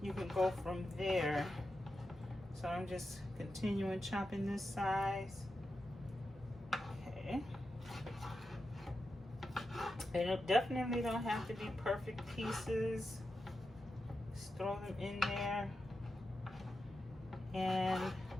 you can go from there. So I'm just continuing chopping this size. Okay. And it definitely don't have to be perfect pieces. Just throw them in there and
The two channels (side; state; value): both; normal; correlation 0.89